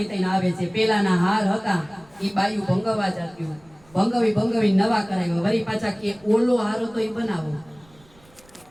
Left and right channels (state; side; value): noise; right; rumble, 28 dB below the sound